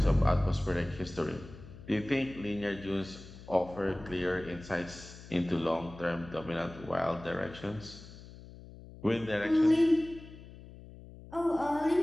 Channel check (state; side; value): noise; left; hum, 17 dB below the sound